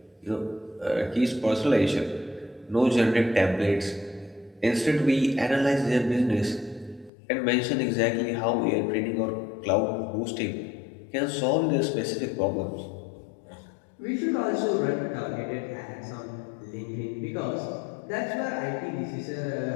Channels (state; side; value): drops out; right; at 7.1 s